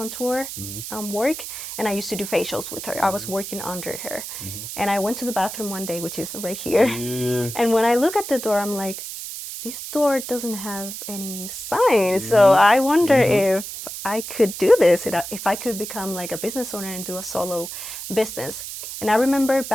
work, and I used to do facials with her. I was working under her. And I went to the bathroom one day, which is right here. And when I look at the door, I'm like, this door doesn't have any signs. So I wonder if I could do this, if I could become like a business owner and do a solo business. And I remember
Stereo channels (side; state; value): right; noise; hiss, 8 dB below the sound